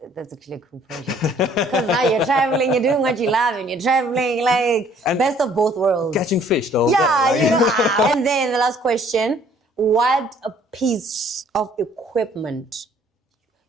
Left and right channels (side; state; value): both; normal; correlation 0.59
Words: that's actually a cool project. Because now you're traveling, you're doing what you love, and you're traveling like And best of both worlds. Catching fish though. Yeah, you know. And then the last question, what a piece of equipment